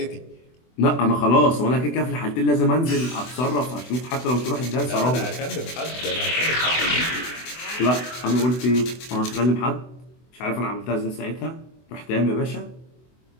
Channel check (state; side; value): late; right; 24 ms